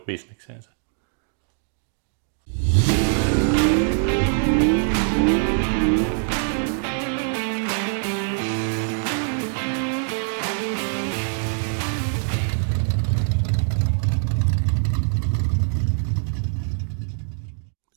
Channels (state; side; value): silent; left; digital silence